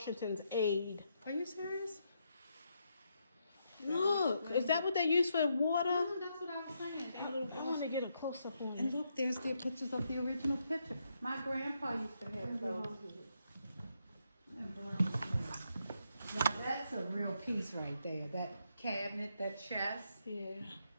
aide. Are you serious? Look, is that what they use for water? That's what I was saying. I want to get a close up on And it. look, there's the pictures of the original picture. My grandpa used to have those. Now that's a real piece right there. That cabinet, that chest. Yeah.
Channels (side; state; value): both; inverted; correlation -0.79